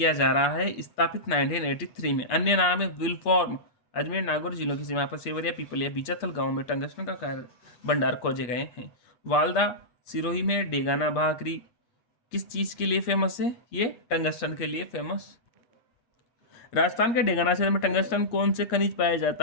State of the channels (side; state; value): right; late; 8.4 ms